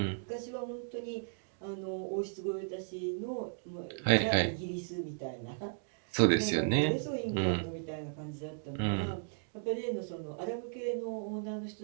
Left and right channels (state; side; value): silent; left; digital silence